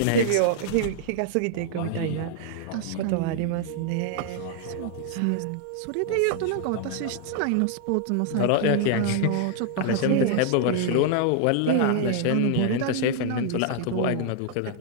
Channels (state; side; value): different; both; correlation -0.01